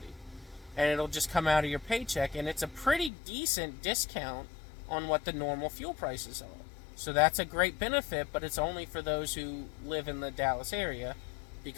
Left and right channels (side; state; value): right; drops out; at 3.1 s